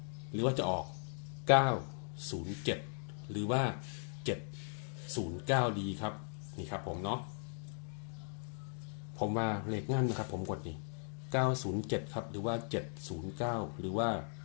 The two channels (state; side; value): silent; right; 52 dB below the other